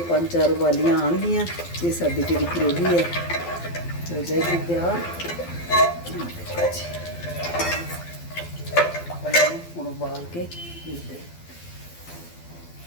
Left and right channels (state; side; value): late; right; 12 ms